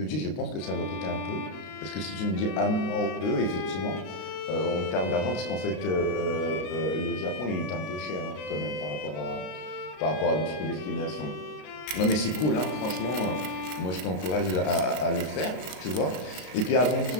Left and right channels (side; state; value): right; late; 33 ms